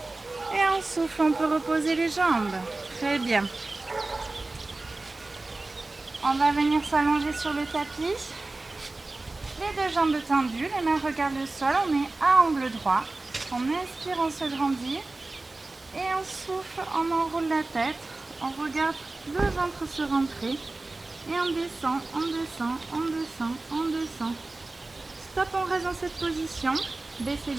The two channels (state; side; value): quieter; left; 3.1 dB